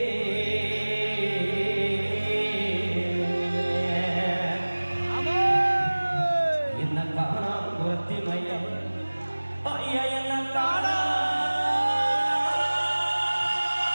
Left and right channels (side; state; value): both; inverted; correlation -1.00